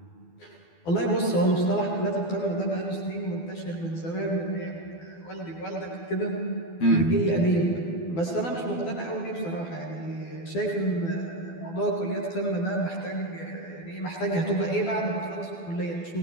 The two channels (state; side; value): late; right; 12 ms